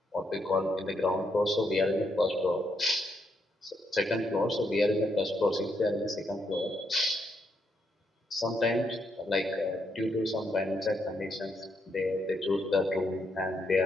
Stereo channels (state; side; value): normal; both; correlation 0.78